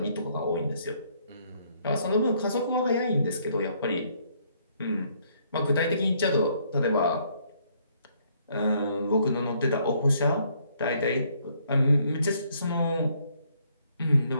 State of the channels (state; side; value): inverted; both; correlation -0.68